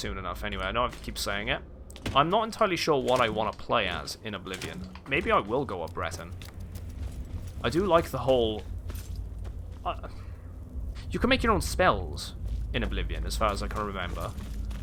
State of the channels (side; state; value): both; identical; correlation 1.00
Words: enough. Anyway, I know I keep saying it. I'm not entirely sure what I want to play as in Oblivion. Maybe I will go up Breton. I do like the whole. You can make your own spells in Oblivion, as far as I can remember.